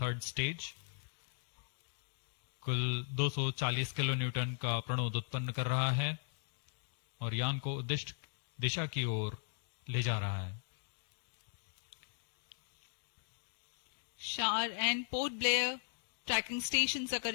stage कुल 240 किलो न्यूटन का प्रणोद उत्पन्न कर रहा है और यान को उद्दिष्ट दिशा की ओर ले जा रहा है। Shah and Port Blair tracking stations are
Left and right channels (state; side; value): silent; right; digital silence